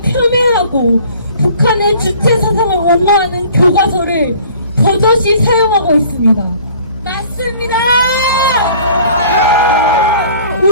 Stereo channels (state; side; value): inverted; both; correlation -0.52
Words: 폄훼하고 북한의 주체 사상을 옹호하는 교과서를 버젓이 사용하고 있습니다. 맞습니다!